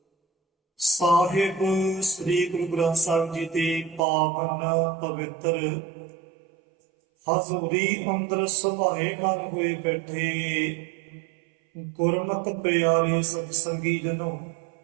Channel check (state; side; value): drops out; left; at 4.0 s